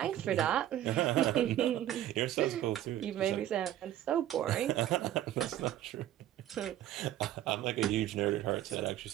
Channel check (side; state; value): left; quieter; 12.7 dB